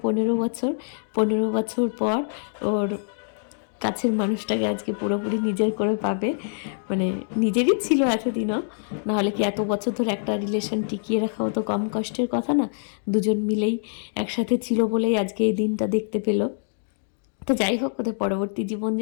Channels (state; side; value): silent; right; digital silence